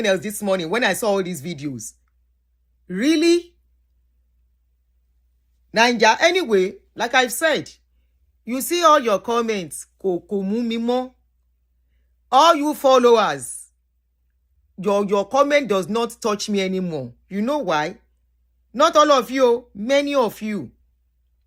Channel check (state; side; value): identical; both; correlation 1.00